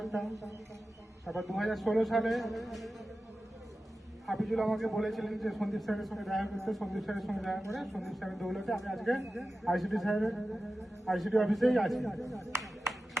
তারপর 2016 সালে হাফিজুল আমাকে বলেছিলেন যে সন্দীপ স্যারের সঙ্গে দেখা করতে। সন্দীপ স্যারের সঙ্গে দেখা করে সন্দীপ স্যারের দৌলতে আমি আজকে আইসিটি অফিসেই আছি।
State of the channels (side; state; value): both; normal; correlation 0.94